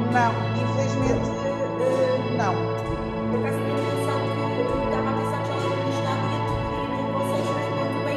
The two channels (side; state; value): both; identical; correlation 1.00